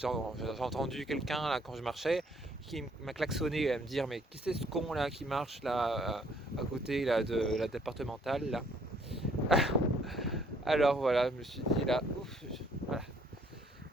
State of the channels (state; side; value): normal; both; correlation 0.63